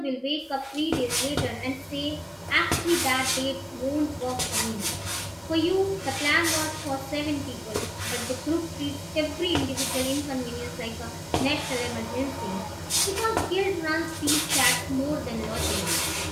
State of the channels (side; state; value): both; identical; correlation 1.00